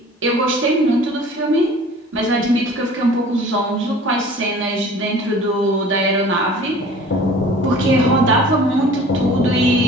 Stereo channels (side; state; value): both; normal; correlation 0.46